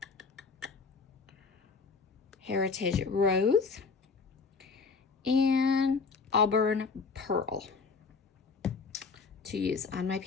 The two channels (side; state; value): right; quieter; 4.8 dB